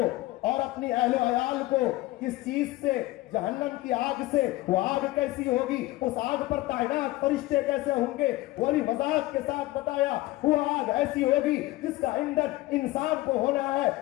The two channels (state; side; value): quieter; right; 18.5 dB